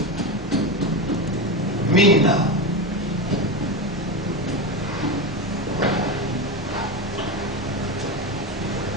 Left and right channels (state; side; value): normal; both; correlation 0.17